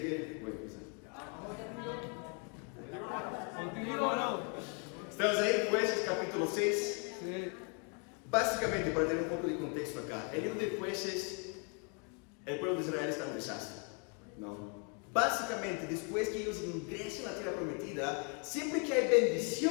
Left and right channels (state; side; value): quieter; right; 36.2 dB